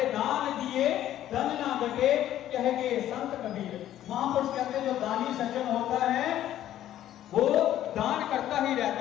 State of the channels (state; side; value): quieter; right; 12.3 dB